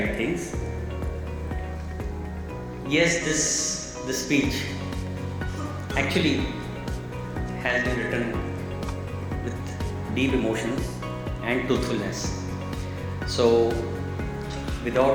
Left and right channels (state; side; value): identical; both; correlation 1.00